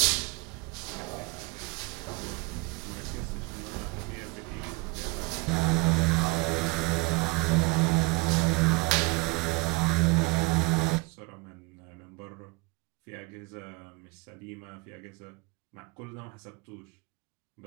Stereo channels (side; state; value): left; quieter; 26.3 dB